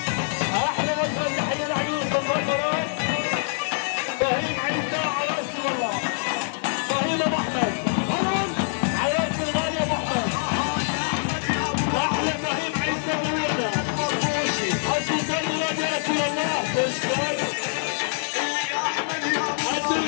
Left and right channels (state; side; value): silent; right; digital silence